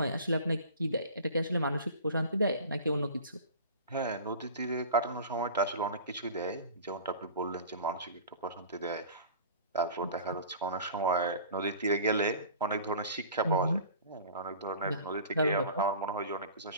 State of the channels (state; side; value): inverted; both; correlation -0.40